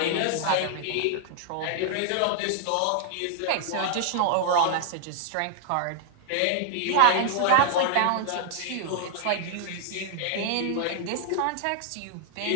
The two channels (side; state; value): both; different; correlation 0.00